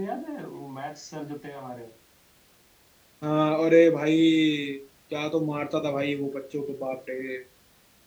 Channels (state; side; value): identical; both; correlation 1.00